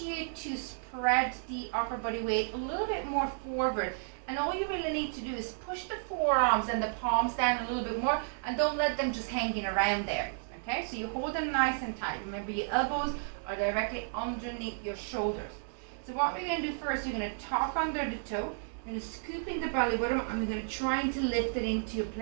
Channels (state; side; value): silent; left; 56 dB below the other